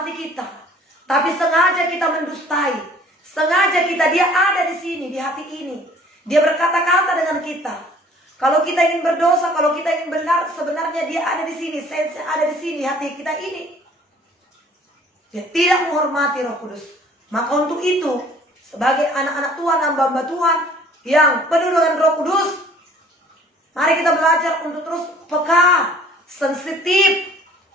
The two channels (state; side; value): normal; both; correlation 0.54